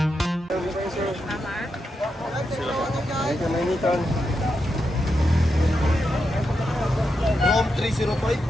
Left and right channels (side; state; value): both; normal; correlation 0.86